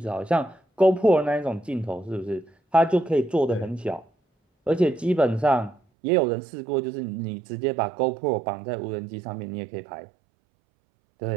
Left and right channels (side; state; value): left; drops out; at 5.8 s